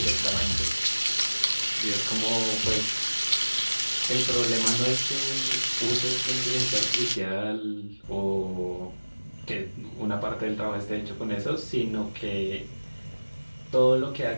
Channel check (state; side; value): inverted; both; correlation -1.00